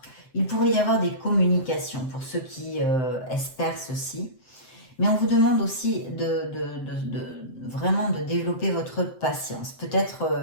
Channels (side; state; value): right; late; 7.8 ms